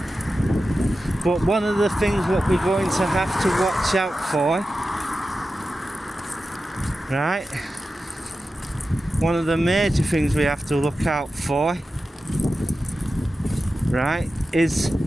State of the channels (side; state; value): both; normal; correlation 0.93